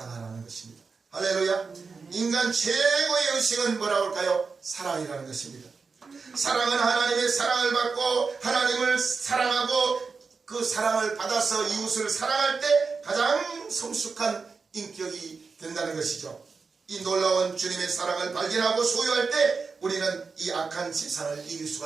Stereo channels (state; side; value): quieter; left; 4.8 dB